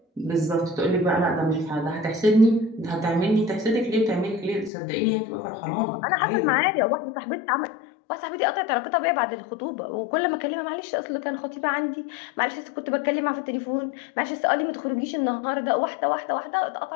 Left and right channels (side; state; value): right; drops out; at 4.7 s